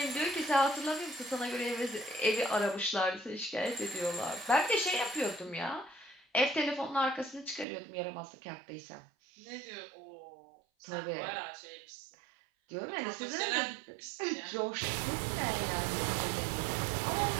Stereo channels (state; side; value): drops out; left; at 7.7 s